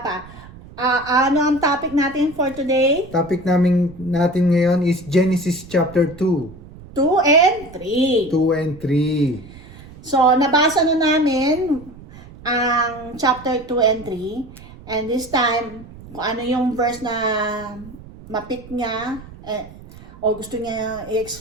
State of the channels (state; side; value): noise; right; rumble, 18 dB below the sound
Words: Ano ang topic natin for today? Topic natin ngayon is Genesis chapter 2. 2 and 3. 2 and 3. So, nabasa na namin ang chapter 2 and 3. And this time, kung ano yung verse na mapit niya, o gusto niya